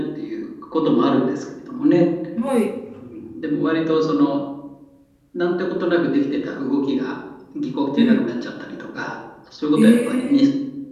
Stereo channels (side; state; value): both; identical; correlation 1.00